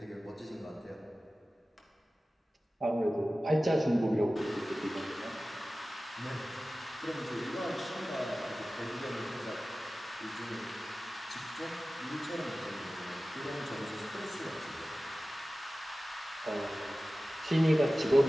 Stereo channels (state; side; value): normal; both; correlation 0.96